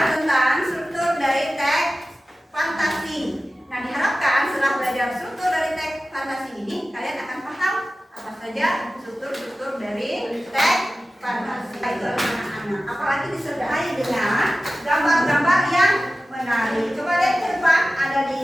tentang struktur dari teks fantasi. Nah, diharapkan setelah belajar struktur dari teks fantasi ini, kalian akan paham apa saja struktur dari teks fantasi itu anak-anak. Apalagi disertai dengan gambar-gambar yang menarik. Coba lihat ke depan, ada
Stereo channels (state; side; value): normal; both; correlation 0.95